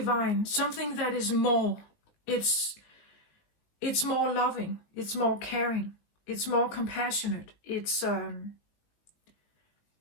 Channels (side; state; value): right; late; 19 ms